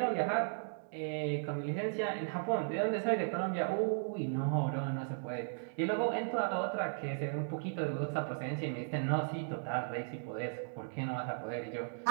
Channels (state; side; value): silent; left; digital silence